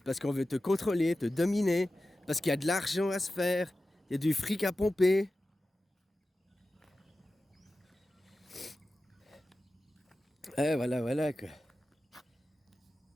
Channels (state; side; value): normal; both; correlation 0.94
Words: parce qu'on veut te contrôler, te dominer, parce qu'il y a de l'argent à se faire, il y a du fric à pomper. Voilà, quoi.